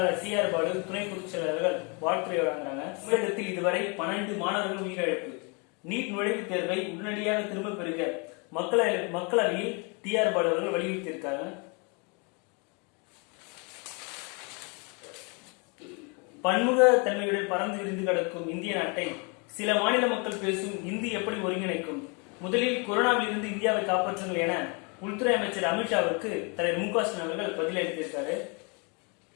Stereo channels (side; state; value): right; quieter; 32.8 dB